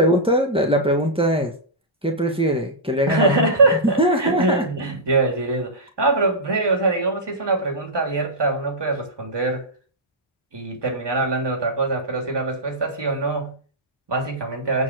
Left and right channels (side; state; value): both; normal; correlation -0.12